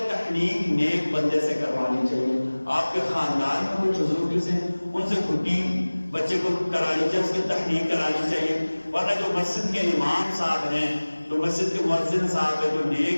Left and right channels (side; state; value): both; inverted; correlation -1.00